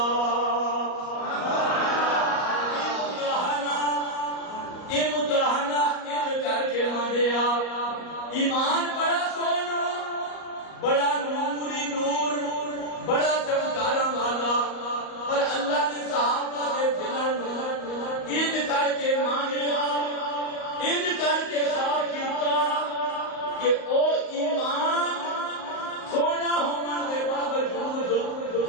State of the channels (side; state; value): right; late; 38 ms